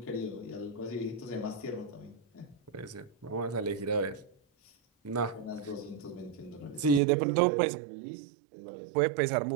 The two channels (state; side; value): drops out; left; at 7.0 s